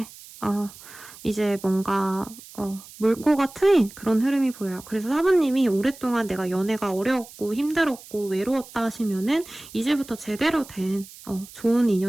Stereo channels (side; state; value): right; noise; hiss, 19 dB below the sound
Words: 이제 뭔가 물꼬가 트인 그런 흐름이 보여요. 그래서 4번님이 오랫동안 내가 연애가 어려웠고 힘들었고 외로웠다 하시면은 이제부터 제대로 된 좋은